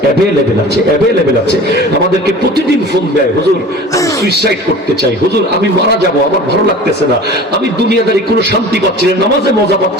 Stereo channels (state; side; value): normal; both; correlation 0.40